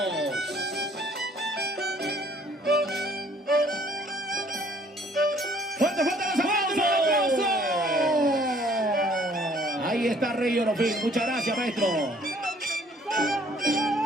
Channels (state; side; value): normal; both; correlation 0.59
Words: ¡Fuerte, fuerte los aplausos! Ahí está Rey Orofín. Muchas gracias, maestro.